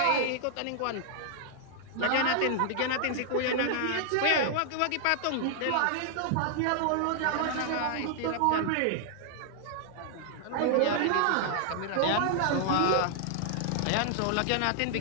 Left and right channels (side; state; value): both; different; correlation -0.01